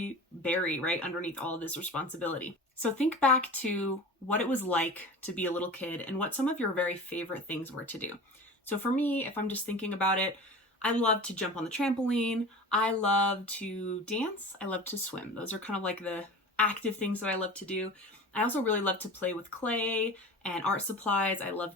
bury right underneath all of this responsibility. So think back to what it was like to be a little kid and what some of your very favorite things were to do. So for me, if I'm just thinking about it, I love to jump on the trampoline. I love to dance. I love to swim. Those are kind of like the active things that I love to do. I also really love to play with clay and art supplies. I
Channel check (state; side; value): normal; both; correlation 0.35